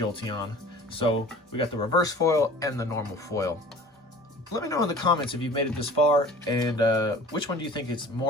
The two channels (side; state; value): both; normal; correlation 0.45